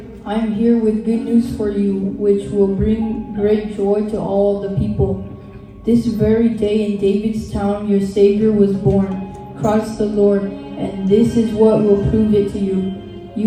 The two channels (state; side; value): identical; both; correlation 1.00